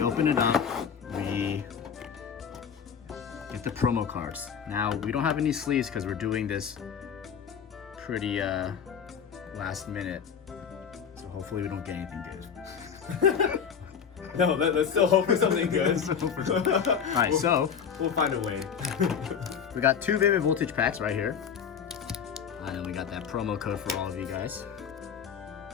open it up, we get the promo cards. Now, we don't have any sleeves because we're doing this pretty last minute. So hopefully we don't get anything good. No, let's still hope for something good. Alright, so we'll find a way. We got two Vivid Voltage packs right here. And then we got that promo code for all of you guys.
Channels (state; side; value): quieter; right; 7.3 dB